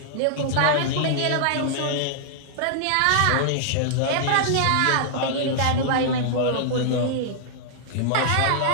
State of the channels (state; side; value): different; both; correlation -0.01